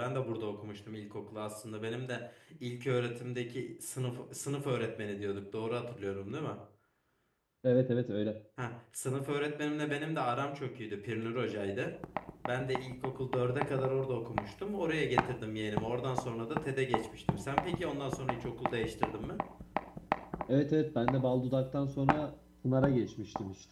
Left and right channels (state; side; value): identical; both; correlation 1.00